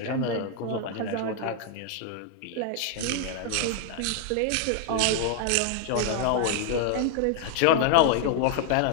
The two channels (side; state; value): both; different; correlation 0.00